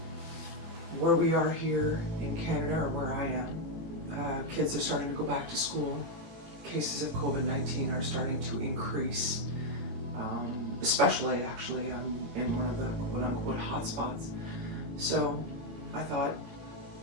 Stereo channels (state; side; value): late; left; 18 ms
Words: Where we are here in Canada, or where I am, kids are starting to go back to school. Cases of COVID-19 are starting to increase, especially actually I'm in one of the quote-unquote hotspots. So I thought,